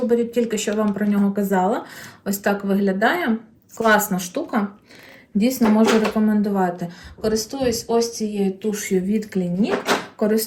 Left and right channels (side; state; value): both; identical; correlation 1.00